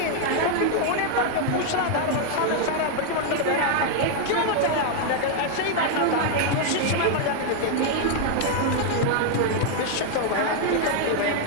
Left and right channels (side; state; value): both; different; correlation 0.00